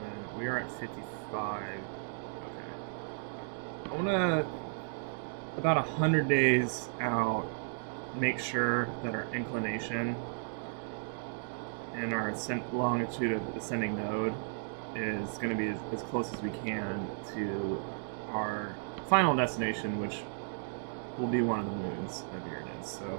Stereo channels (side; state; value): left; silent; digital silence